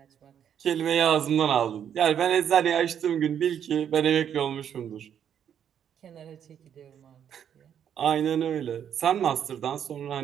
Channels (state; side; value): quieter; left; 8.9 dB